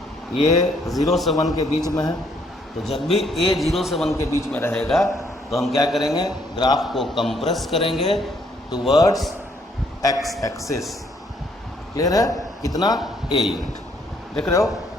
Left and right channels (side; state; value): both; normal; correlation 0.68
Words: ये 0 से 1 के बीच में है, तो जब भी ए 0 से 1 के बीच में रहेगा तो हम क्या करेंगे, ग्राफ को कंप्रेस करेंगे टूवर्ड्स एक्स एक्सिस। क्लियर है? कितना? A unit. देख रहे हो,